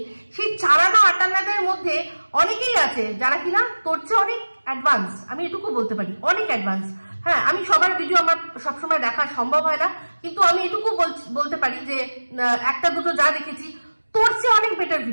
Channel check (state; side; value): inverted; both; correlation -1.00